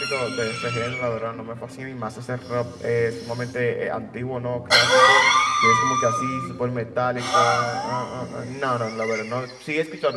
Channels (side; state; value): both; identical; correlation 1.00